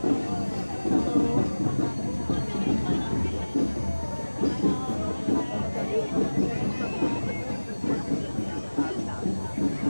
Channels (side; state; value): both; inverted; correlation -1.00